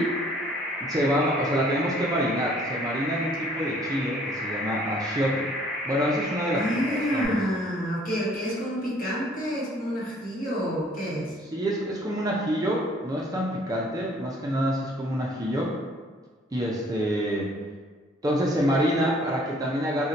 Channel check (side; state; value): both; normal; correlation 0.58